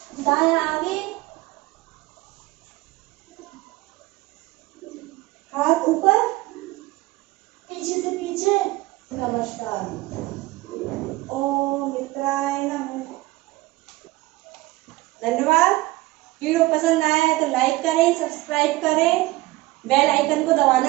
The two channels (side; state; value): left; quieter; 19.7 dB